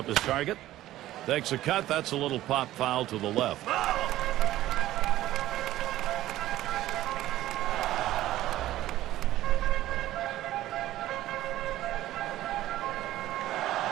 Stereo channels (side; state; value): left; quieter; 14.7 dB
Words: his target. Takes a cut. That's a little pop foul to the left.